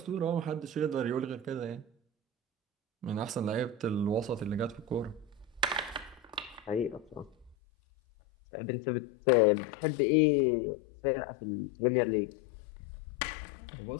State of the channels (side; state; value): right; drops out; at 7.6 s